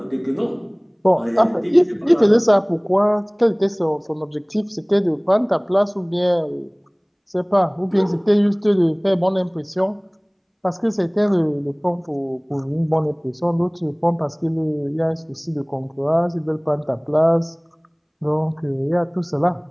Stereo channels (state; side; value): identical; both; correlation 1.00